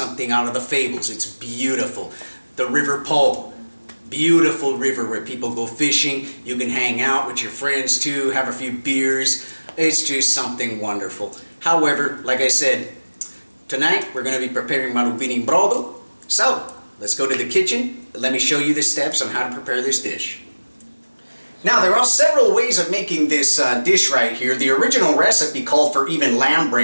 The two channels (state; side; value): inverted; both; correlation -1.00